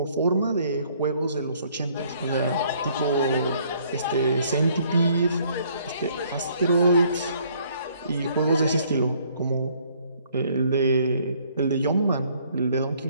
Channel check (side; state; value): both; inverted; correlation -0.63